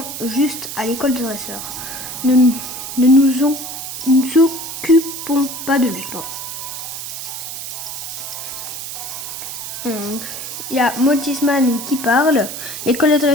juste à l'école de dresseur. Nous ne nous occupons pas de lui. Il y a Motisman qui parle. L'école de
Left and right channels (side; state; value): right; noise; hiss, 7 dB below the sound